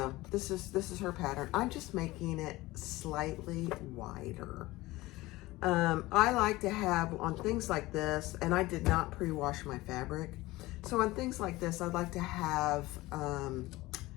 this is her pattern. I'm just making it slightly wider. I like to have on things like this, and I did not pre-wash my fabric. So on things like this, I'd like to have a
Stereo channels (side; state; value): right; quieter; 19.4 dB